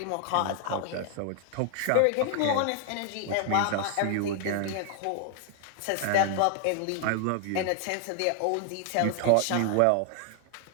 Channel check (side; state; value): both; different; correlation 0.00